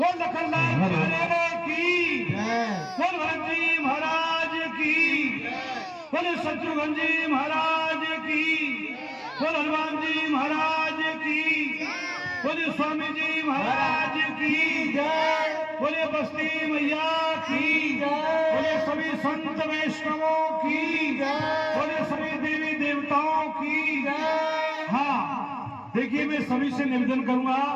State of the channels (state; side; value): identical; both; correlation 1.00